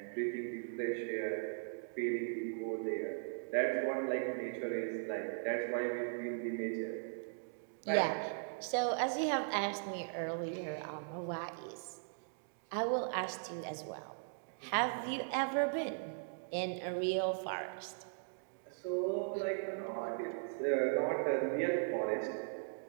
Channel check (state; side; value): silent; left; digital silence